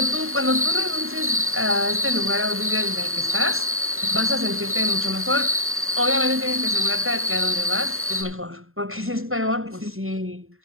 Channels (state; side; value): late; left; 0.61 ms